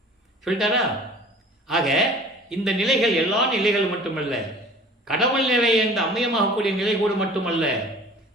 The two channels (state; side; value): normal; both; correlation 0.45